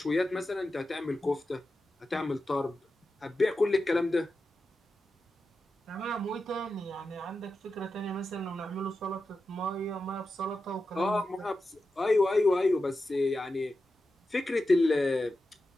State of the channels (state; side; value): normal; both; correlation 0.91